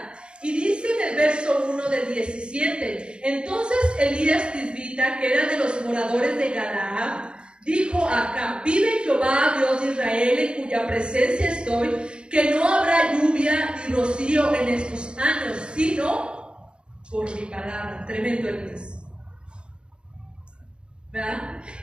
Y dice en el verso 1 del 17, entonces Elías Tisbita, que era de los moradores de Galaad, dijo a Acab, vive Jehová, Dios de Israel, en cuya presencia estoy, que no habrá lluvia ni rocío en estos años, sino por mi palabra. Tremendo Elías, ¿verdad?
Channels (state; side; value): late; left; 0.054 ms